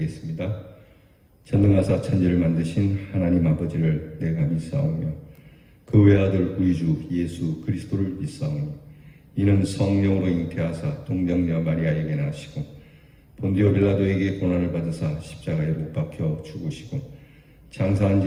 전능하사 천지를 만드신 하나님 아버지를 내가 믿사오며 그 외아들 우리 주 예수 그리스도를 믿사오니 이는 성령으로 잉태하사 동정녀 마리아에게 나시고 본디오 빌라도에게 고난을 받으사 십자가에 못 박혀 죽으시고 장사한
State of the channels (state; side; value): identical; both; correlation 1.00